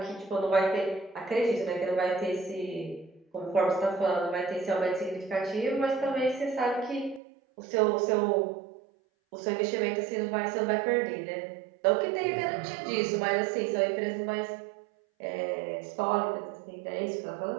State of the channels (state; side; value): drops out; left; at 7.2 s